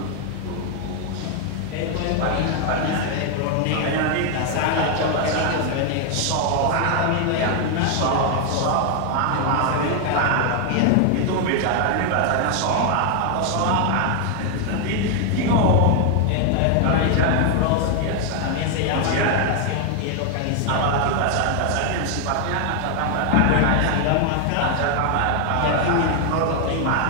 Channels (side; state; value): both; different; correlation 0.00